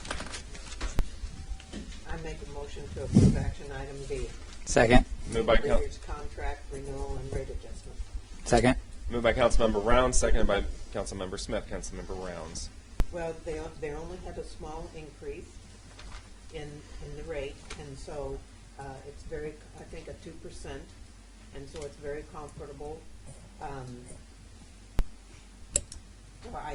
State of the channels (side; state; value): both; identical; correlation 1.00